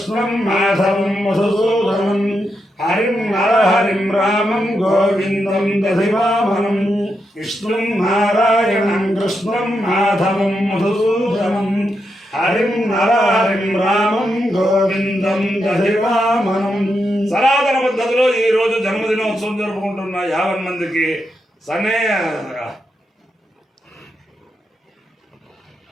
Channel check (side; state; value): both; normal; correlation 0.84